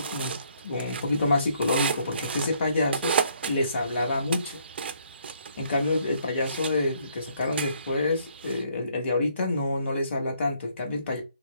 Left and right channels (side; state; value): both; inverted; correlation -0.67